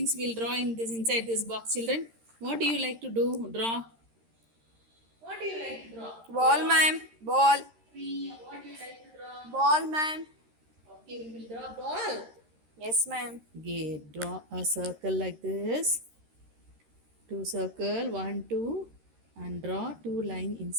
will draw in this inside this box, children? What do you like to do? Draw. What do you like to draw? Ball, ma'am. Ball. Tree. What do you like to draw? Ball, ma'am. Okay, we will draw ball. Yes, ma'am. Okay, draw a circle like this. Two circle, 1, 2, and draw 2 line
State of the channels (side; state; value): left; late; 13 ms